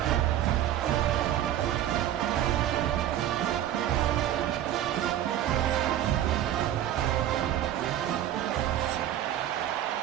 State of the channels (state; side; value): quieter; left; 11.8 dB